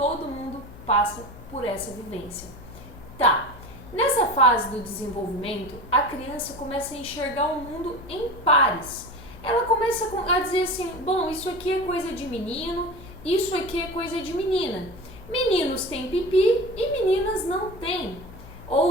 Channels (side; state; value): left; noise; hum, 17 dB below the sound